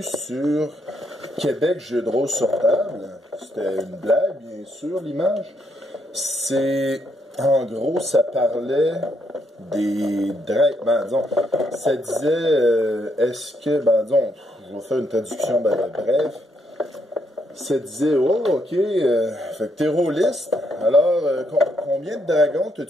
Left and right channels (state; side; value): normal; both; correlation 0.75